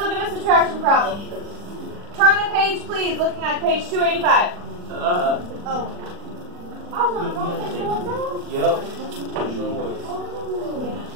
at a subtraction problem. Turn the page, please, looking at page 285. Yep.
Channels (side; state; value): left; late; 40 ms